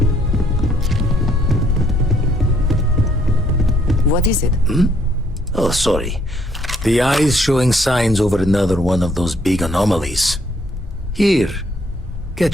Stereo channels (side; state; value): both; normal; correlation 0.67